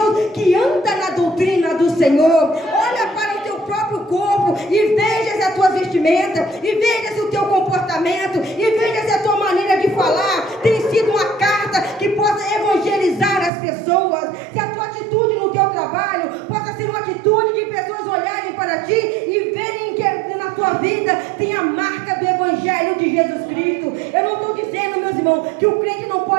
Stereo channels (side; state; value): left; drops out; at 13.5 s